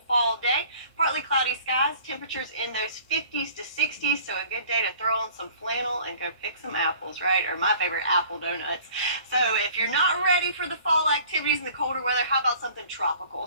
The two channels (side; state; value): both; inverted; correlation -0.51